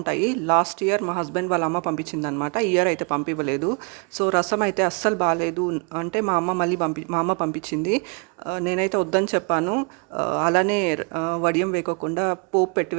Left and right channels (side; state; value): left; quieter; 35.1 dB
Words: లాస్ట్ ఇయర్ మా హస్బెండ్ వాళ్ళ అమ్మ పంపించిందనమాట. ఈ ఇయర్ అయితే పంపివ్వలేదు. సో రసం అయితే అస్సలు బాగాలేదు అంటే మా అమ్మ పంపించింది. నేనైతే వద్దని చెప్పాను. అలానే వడియం వేయకోకుండా పోపు పెట్టి